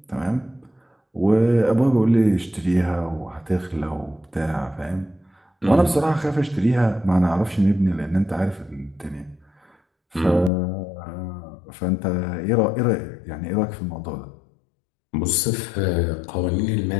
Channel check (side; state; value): right; drops out; at 10.5 s